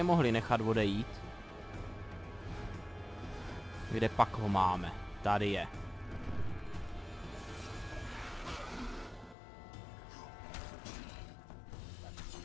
mohli nechat odejít. Kde pak ho máme? Tady je.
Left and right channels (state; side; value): drops out; right; at 9.3 s